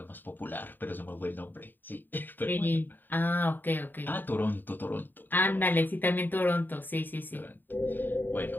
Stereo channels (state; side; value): late; right; 0.091 ms